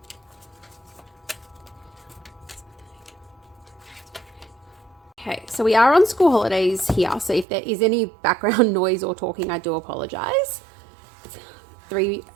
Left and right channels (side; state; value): left; drops out; at 7.5 s